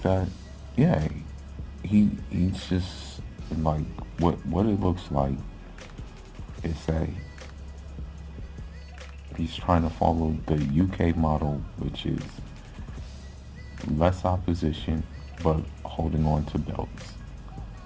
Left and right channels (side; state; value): both; identical; correlation 1.00